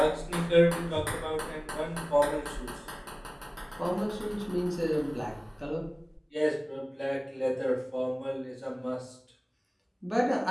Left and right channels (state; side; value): identical; both; correlation 1.00